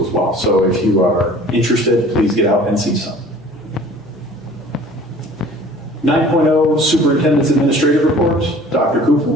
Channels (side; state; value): both; normal; correlation 0.48